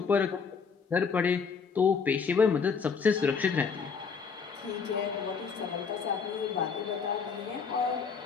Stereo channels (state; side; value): quieter; right; 5.7 dB